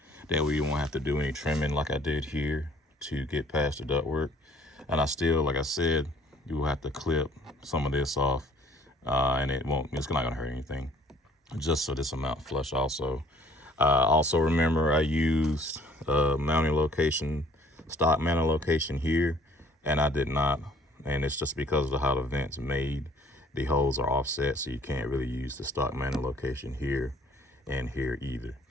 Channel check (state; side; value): normal; both; correlation 0.56